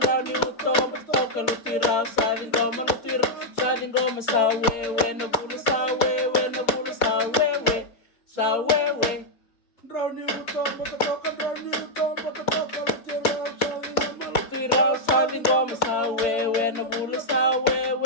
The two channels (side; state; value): right; late; 4.4 ms